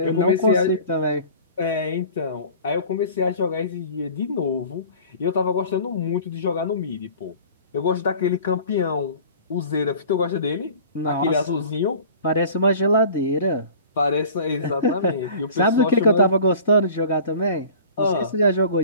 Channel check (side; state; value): both; inverted; correlation -0.44